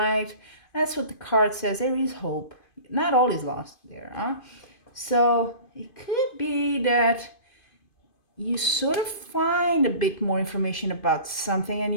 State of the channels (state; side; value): late; right; 2.5 ms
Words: That's what the card says. There is hope. Not all is lost there, huh? So it could be that you sort of find a bit more information about something, and